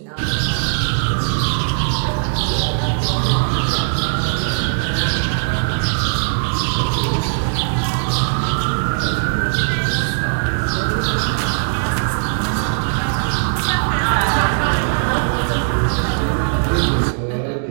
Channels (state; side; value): silent; left; digital silence